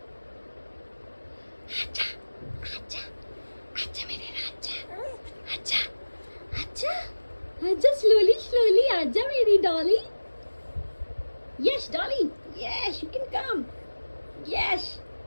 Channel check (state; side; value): inverted; both; correlation -1.00